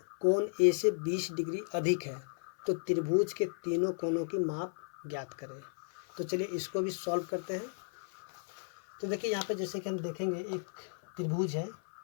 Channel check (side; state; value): right; silent; 55 dB below the other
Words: कोण ए से 20 डिग्री अधिक है, तो त्रिभुज के तीनों कोणों की माप ज्ञात करें। तो चलिए इसको भी सॉल्व करते हैं। तो देखिए यहाँ पे जैसे कि हम देखेंगे एक त्रिभुज है,